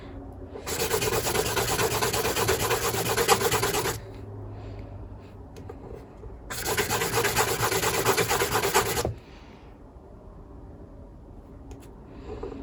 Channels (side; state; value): both; identical; correlation 1.00